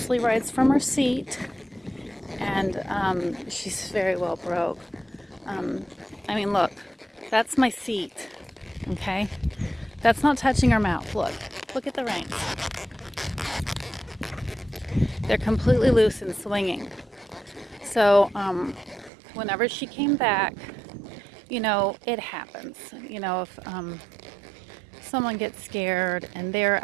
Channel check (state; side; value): drops out; left; at 19.1 s